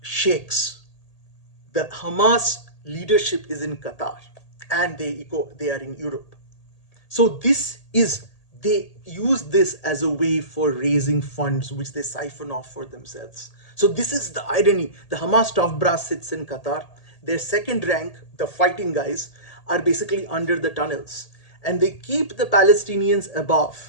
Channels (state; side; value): late; right; 1.8 ms